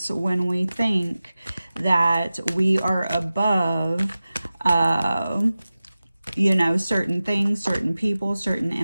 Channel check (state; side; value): inverted; both; correlation -0.95